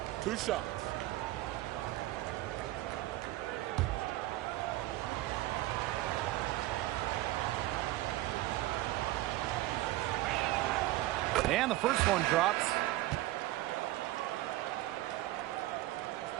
2 shots. And the first one drops.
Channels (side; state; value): left; quieter; 16.9 dB